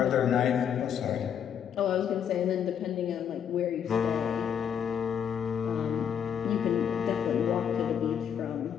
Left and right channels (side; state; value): right; quieter; 8.4 dB